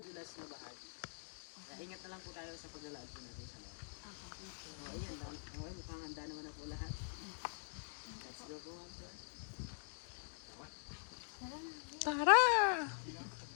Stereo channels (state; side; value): silent; right; digital silence